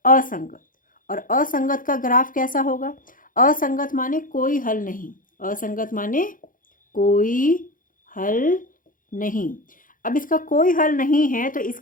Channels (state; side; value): late; right; 0.39 ms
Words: असंगत। और असंगत का ग्राफ कैसा होगा? असंगत माने कोई हल नहीं, असंगत माने कोई हल नहीं। अब इसका कोई हल नहीं है तो